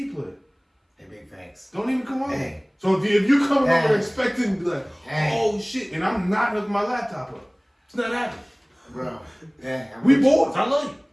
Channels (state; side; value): identical; both; correlation 1.00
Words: player. Hey, big facts. Don't even come over. Hey. So if you come Hey. over expecting to be like, Hey. oh shit, and I'm not hooking my laptop up. It's not happening. Bro. Yeah, I'm We with you. boys. I love you.